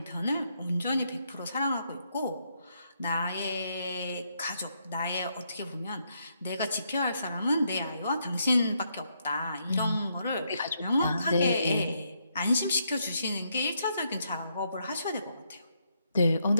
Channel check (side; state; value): both; inverted; correlation -0.77